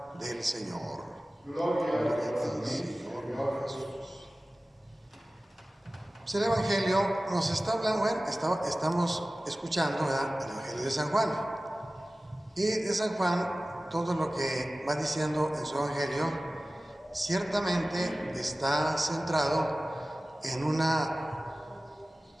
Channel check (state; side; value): normal; both; correlation 0.97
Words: del Señor. Gloria a ti, Señor Jesús. Pues el Evangelio nos está hablando, estamos escuchando, ¿verdad?, el Evangelio de San Juan. Y de San Juan, todo lo que va diciendo en su Evangelio, ciertamente está centrado en una